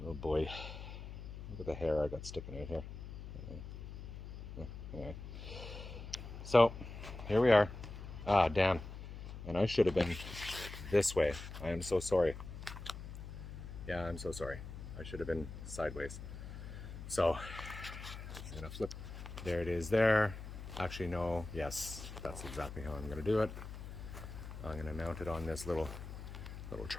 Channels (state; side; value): noise; left; hum, 10 dB below the sound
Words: Oh boy, look at the hair I got sticking out here. Anyway. So here we are. Ah, damn. And I should have been this way. I am so sorry. Yeah, I'm so sorry. I should have been sideways. So I'm gonna flip. There it is there. Actually, no. Yes, that's exactly how I'm gonna do it. I'm gonna mount it on this little